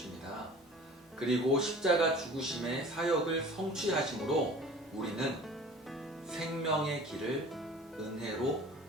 그리고 십자가 죽으심의 사역을 성취하심으로 우리는 생명의 길을 은혜로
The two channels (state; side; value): normal; both; correlation 0.44